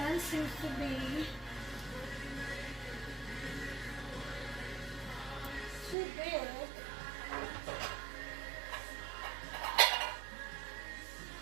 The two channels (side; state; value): left; drops out; at 6.0 s